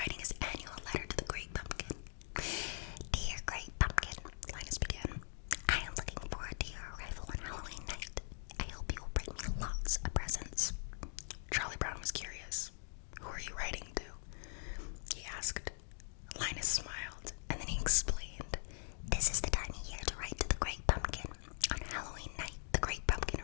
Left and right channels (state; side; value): silent; right; 50 dB below the other